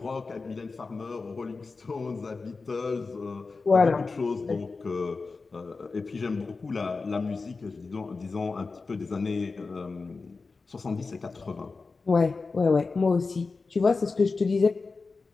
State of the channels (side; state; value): right; quieter; 4.2 dB